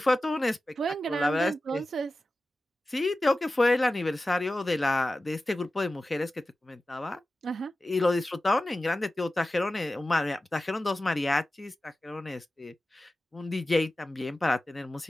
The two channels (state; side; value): normal; both; correlation 0.94